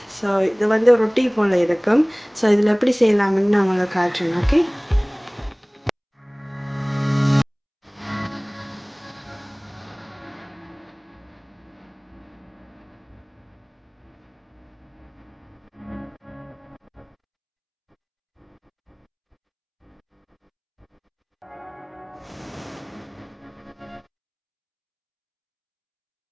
ஸோ இது வந்து ரொட்டி போல் இருக்கும். ஸோ இதில் எப்படி செய்யலாம்னு நான் உங்களுக்கு காட்டுறேன்.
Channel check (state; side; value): identical; both; correlation 1.00